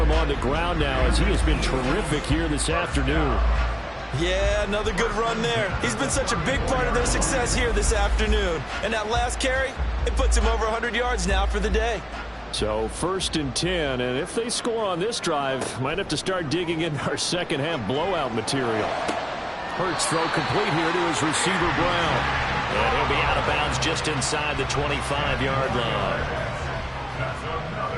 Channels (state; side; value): identical; both; correlation 1.00